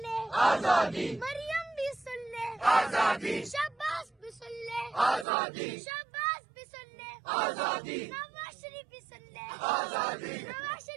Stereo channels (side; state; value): left; drops out; at 5.2 s